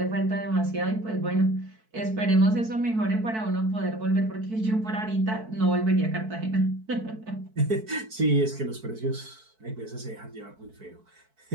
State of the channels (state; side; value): late; left; 4.6 ms